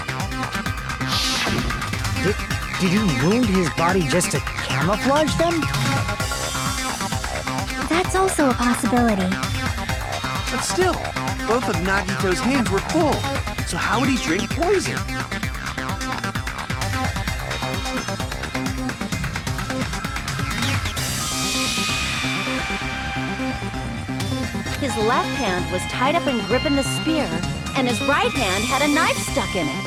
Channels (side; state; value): both; identical; correlation 1.00